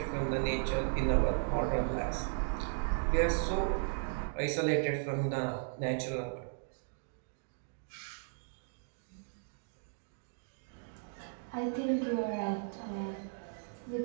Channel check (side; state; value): left; silent; digital silence